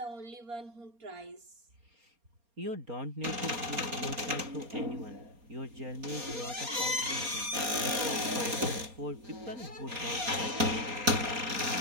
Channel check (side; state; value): left; late; 4.3 ms